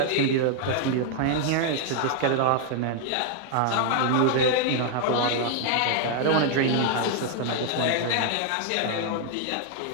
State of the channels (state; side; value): different; both; correlation 0.00